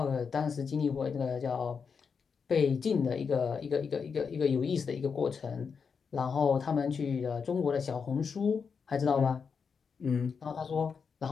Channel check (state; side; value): quieter; right; 5.9 dB